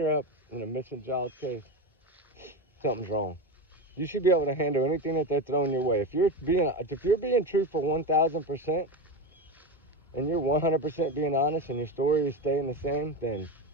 up in a missing child case, something's wrong. You should be able to handle anything that they're throwing your way. If you're being truthful 1,000%, and you're 100% being honest, and your story is staying the same, then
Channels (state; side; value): normal; both; correlation 0.19